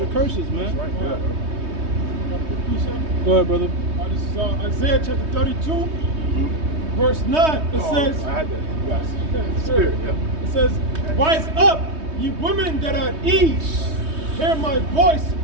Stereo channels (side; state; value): left; late; 3.2 ms